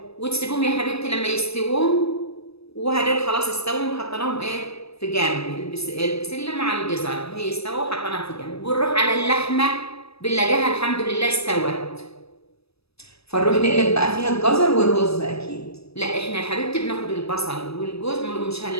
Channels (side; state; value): right; late; 0.78 ms